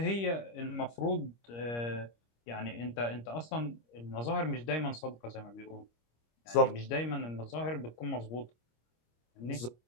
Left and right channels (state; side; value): late; right; 25 ms